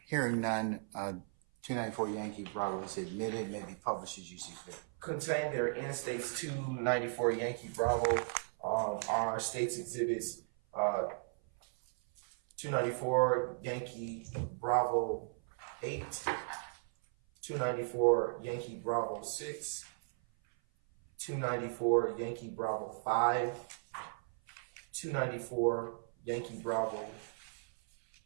Hearing none, 294 Yankee Bravo is admitted, may be published as you see fit. Contained there in State's 294 Yankee Bravo are State's Exhibits 294 Yankee Bravo 8, 294 Yankee Bravo 6, 294 Yankee Bravo 5, 294 Yankee Bravo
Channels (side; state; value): left; silent; 53 dB below the other